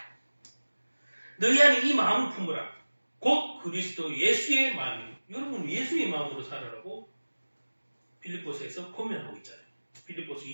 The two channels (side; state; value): both; inverted; correlation -1.00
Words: 너희 안에 이 마음을 품으라. 곧 그리스도 예수의 마음이. 여러분 예수의 마음으로 살아라고 빌립보서에서 권면하고 있잖아요. 빌립보서